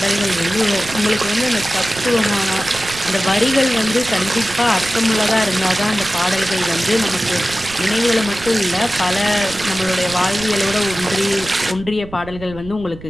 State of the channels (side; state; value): right; noise; rumble, 16 dB below the sound